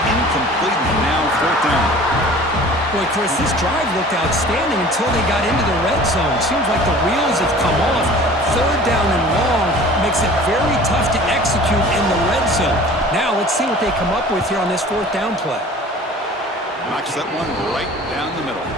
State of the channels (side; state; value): both; normal; correlation 0.45